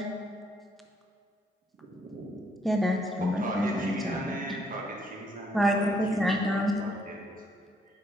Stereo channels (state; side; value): normal; both; correlation 0.70